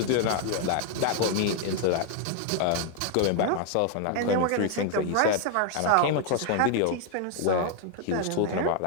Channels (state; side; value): different; both; correlation 0.00